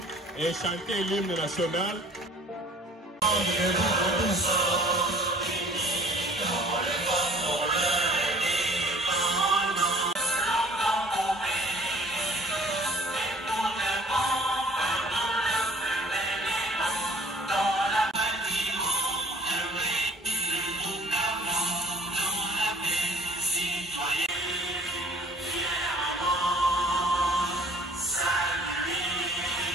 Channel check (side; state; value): both; normal; correlation 0.53